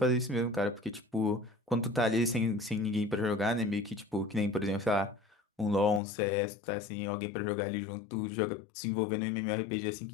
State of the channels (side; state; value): right; drops out; at 6.0 s